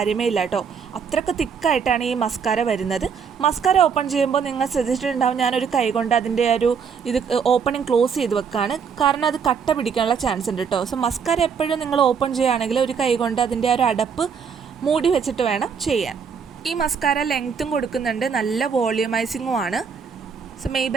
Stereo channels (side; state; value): left; quieter; 6.4 dB